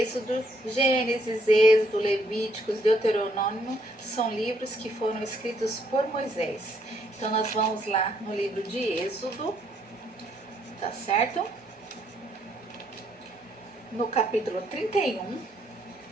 Gênesis, Êxodo, Levíticos, Deuteronômio são livros que foram escritos por Moisés. Então nós vamos lá no livro de Êxodo, tá certo? No capítulo 31,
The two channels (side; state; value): both; normal; correlation 0.70